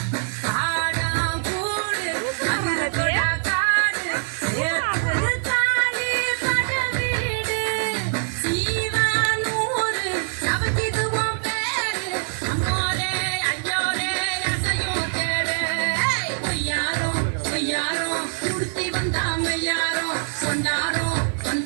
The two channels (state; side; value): silent; left; digital silence